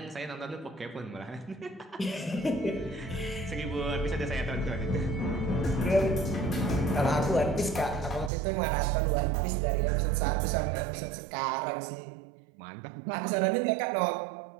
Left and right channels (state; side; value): drops out; left; at 8.3 s